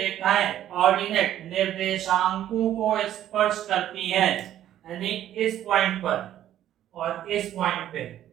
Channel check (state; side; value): quieter; left; 11.8 dB